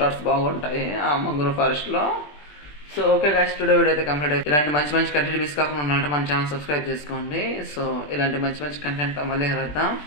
బాగుంటాయి ఆ మంగ్రూ ఫారెస్ట్లో. So okay guys, today video అయితే కంప్లీట్ అయిపోయింది. ఇలాంటి మంచి కంటెంట్ మిస్ కాకుండా ఉండాలంటే మన ఛానల్ సబ్స్క్రైబ్ చేసుకోండి. సో ఇలాంటి మంచి కంటెంట్తో మళ్ళీ కలుద్దాం.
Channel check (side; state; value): right; late; 20 ms